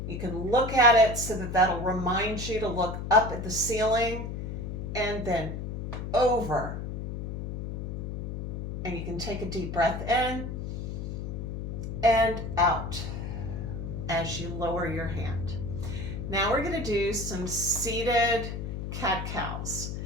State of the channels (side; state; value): left; noise; hum, 5 dB below the sound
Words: You can look at it so that that'll remind you to look up at the ceiling, and then over. And you can take a deep breath in and out as you lower your hand. Now we're going to do some seated cat-cows.